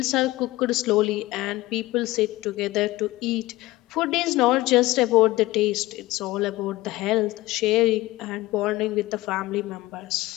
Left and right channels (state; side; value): quieter; right; 18.7 dB